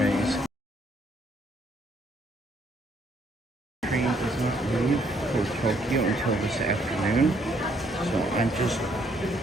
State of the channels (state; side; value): normal; both; correlation 0.68